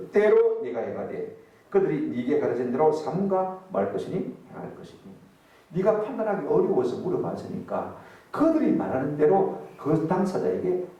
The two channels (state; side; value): identical; both; correlation 1.00